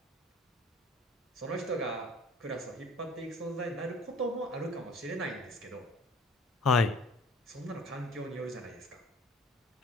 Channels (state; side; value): normal; both; correlation 0.49